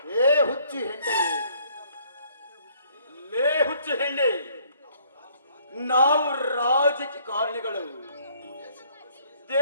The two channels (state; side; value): inverted; both; correlation -0.62